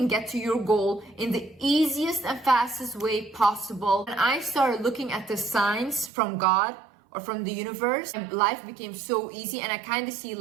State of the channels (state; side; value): drops out; left; at 6.1 s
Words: get to your goal in the easiest and fastest way possible? And I started looking at the signs from God or from the universe, and life became so easy, and I kind of see